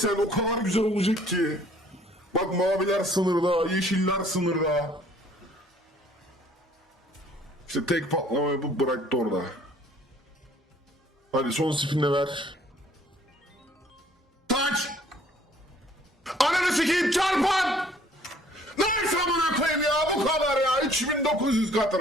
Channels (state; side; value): normal; both; correlation 0.58